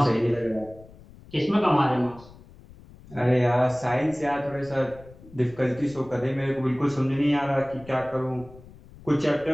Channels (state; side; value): noise; left; rumble, 21 dB below the sound